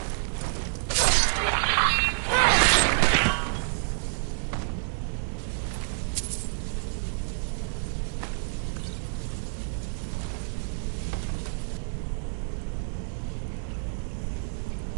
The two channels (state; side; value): silent; left; digital silence